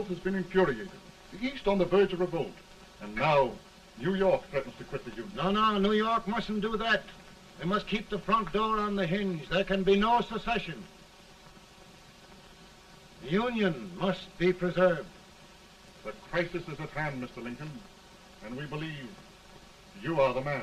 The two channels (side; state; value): both; identical; correlation 1.00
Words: has been infuriated, the East on the verge of revolt, and now New York threatens to quit the Union. No, New York mustn't do that. They must keep the front door on the hinge. There can be no secession. The Union must be preserved. The crisis is at hand, Mr. Lincoln, and we believe you are the